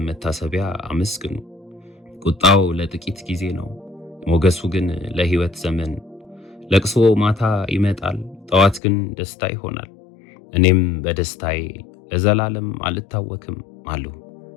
መታሰቢያ አመስግኑ። ቁጣው ለጥቂት ጊዜ ነው፣ ሞገሱ ግን ለሕይወት ዘመን። ለቅሶ ማታ ይመጣል፣ ጠዋት ግን ደስታ ይሆናል። እኔም በደስታዬ ለዘላለም አልታወክም አልሁ።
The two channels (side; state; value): right; drops out; at 8.8 s